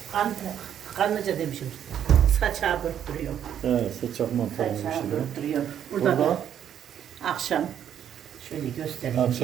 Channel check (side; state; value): left; quieter; 9.6 dB